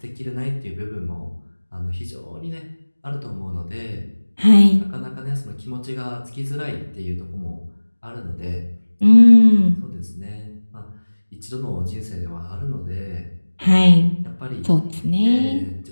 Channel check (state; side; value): inverted; both; correlation -1.00